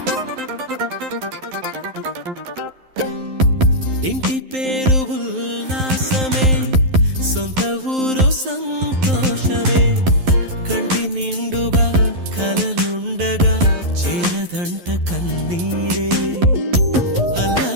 ఇంటి పేరు ఉల్లాసమే, సొంత ఊరు సంతోషమే, కంటి నిండుగా కలలుండగా చేరదంట కన్నీరే.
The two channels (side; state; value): left; late; 11 ms